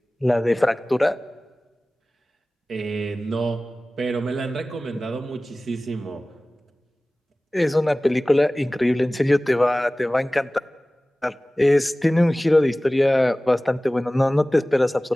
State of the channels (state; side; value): normal; both; correlation 0.98